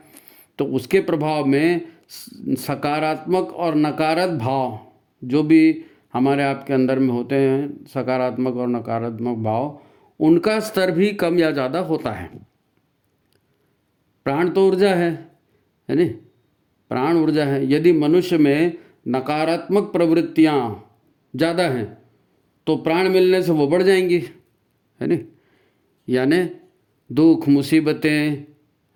तो उसके प्रभाव में सकारात्मक और नकारात्मक भाव जो भी हमारे आपके अंदर में होते हैं, सकारात्मक और नकारात्मक भाव, उनका स्तर भी कम या ज़्यादा होता है। प्राण तो ऊर्जा है नहीं, प्राण ऊर्जा है। यदि मनुष्य में नकारात्मक प्रवृत्तियाँ ज़्यादा हैं तो प्राण मिलने से वो बढ़ जाएंगी, है नहीं। यानी दुख, मुसीबतें,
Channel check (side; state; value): both; identical; correlation 1.00